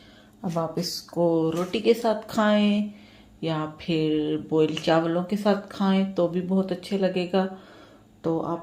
अब आप इसको रोटी के साथ खाएं या फिर बॉयल चावलों के साथ खाएं तो भी बहुत अच्छे लगेगा। तो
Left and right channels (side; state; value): both; identical; correlation 1.00